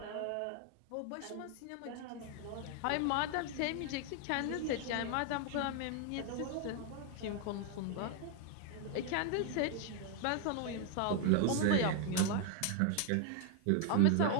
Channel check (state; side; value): different; both; correlation 0.00